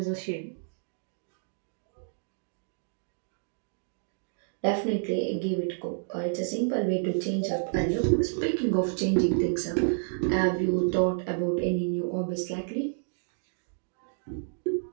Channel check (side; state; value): left; silent; digital silence